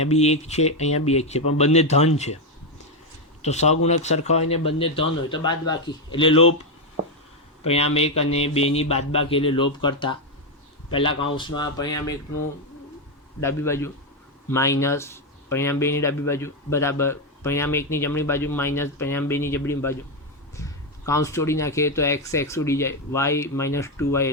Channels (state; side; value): normal; both; correlation 0.05